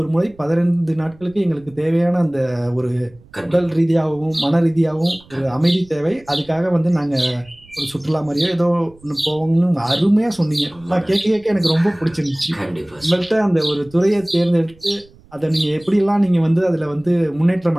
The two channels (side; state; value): right; noise; rumble, 27 dB below the sound